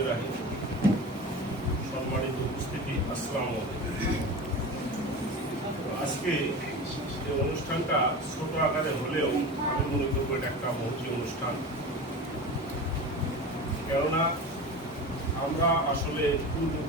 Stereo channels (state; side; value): normal; both; correlation 0.30